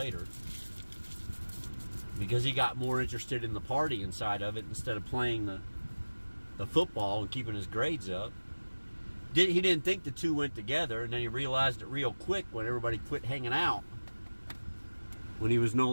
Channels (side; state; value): both; inverted; correlation -1.00